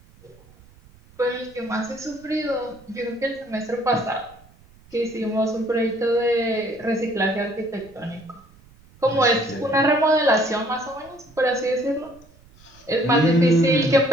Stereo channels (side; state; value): right; noise; rumble, 26 dB below the sound